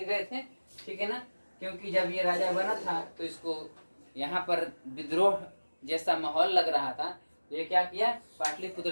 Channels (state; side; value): inverted; both; correlation -1.00